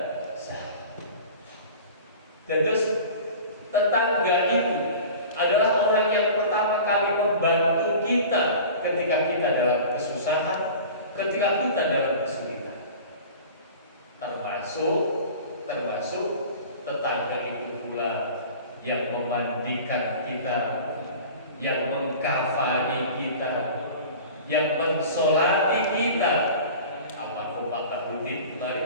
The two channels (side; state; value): both; inverted; correlation -0.39